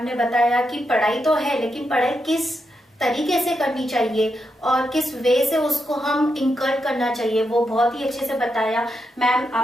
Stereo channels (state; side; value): normal; both; correlation 0.84